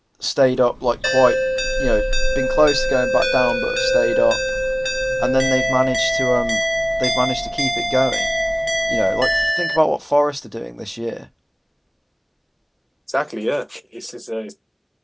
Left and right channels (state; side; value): identical; both; correlation 1.00